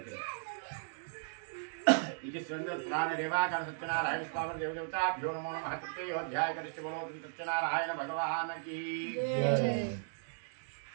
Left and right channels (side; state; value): left; silent; digital silence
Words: ఇది పురాణ దేవాకాండ సత్యనారాయణ స్వామి దేవదేవతాభ్యో నమో నమః. అధ్యాయ కరిష్టి బలో సత్యనారాయణ భగవానకి